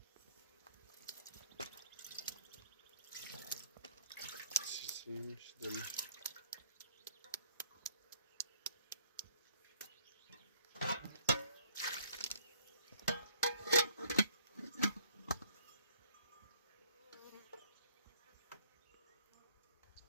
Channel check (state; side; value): inverted; both; correlation -0.60